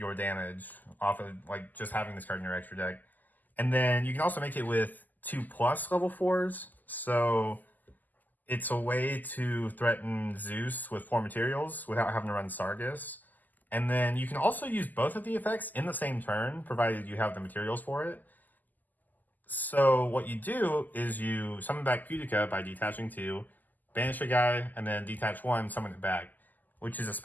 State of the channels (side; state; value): right; late; 0.084 ms